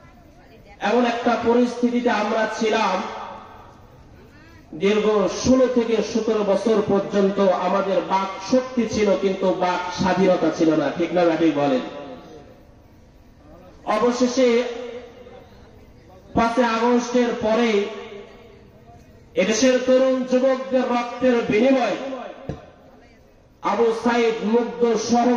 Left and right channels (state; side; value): identical; both; correlation 1.00